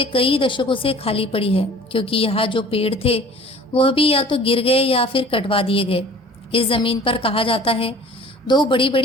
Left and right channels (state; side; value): normal; both; correlation 0.47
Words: कई दशकों से खाली पड़ी है, क्योंकि यहाँ जो पेड़ थे वह भी या तो गिर गए या फिर कटवा दिए गए। इस जमीन पर कहा जाता है दो बड़ी